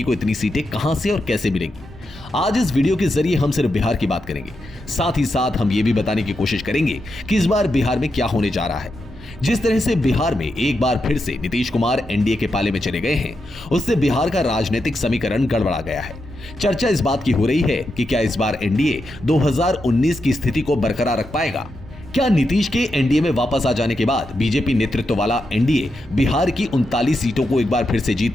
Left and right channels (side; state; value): both; normal; correlation 0.86